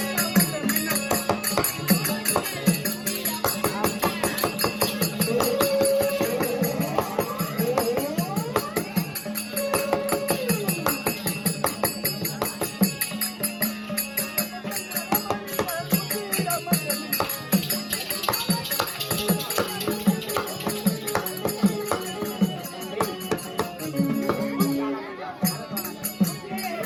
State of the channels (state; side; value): identical; both; correlation 1.00